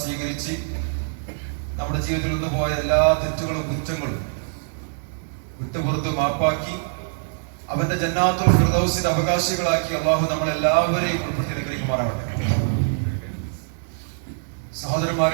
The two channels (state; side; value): silent; left; digital silence